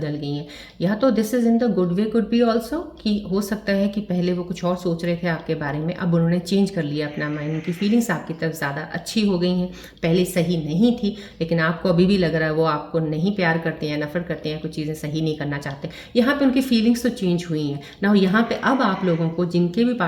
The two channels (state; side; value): identical; both; correlation 1.00